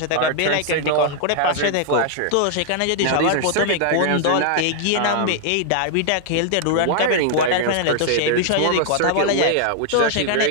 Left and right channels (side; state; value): both; different; correlation -0.01